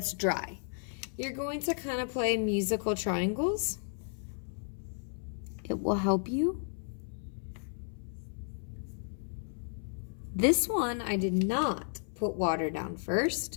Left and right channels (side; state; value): right; silent; 55 dB below the other